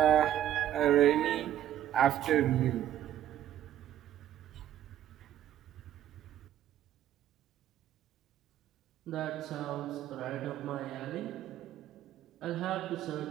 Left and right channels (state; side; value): quieter; left; 11.6 dB